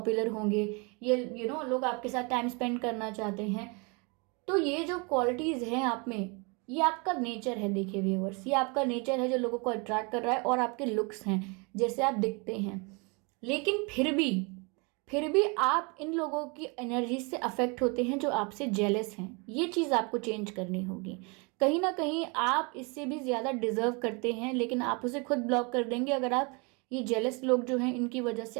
होंगे, ये लोग आपके साथ टाइम स्पेंड करना चाहते हैं, तो ये जो क्वालिटीज़ हैं आप में, ये आपका नेचर है। देखिए व्यूवर्स, ये आपका नेचर है जो लोगों को अट्रैक्ट कर रहा है, और आपके लुक्स हैं जैसे आप दिखते हैं। लेकिन फिर भी आप इन लोगों की एनर्जी से अफेक्ट होते हैं जो आपसे जेलस हैं, ये चीज़ आपको चेंज करनी होगी। कहीं ना कहीं आप इससे भी ज़्यादा डिजर्व करते हैं, लेकिन आप उसे खुद ब्लॉक कर देंगे अगर आप ये जेलस लोग जो हैं इनकी वजह से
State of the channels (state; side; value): quieter; left; 31.0 dB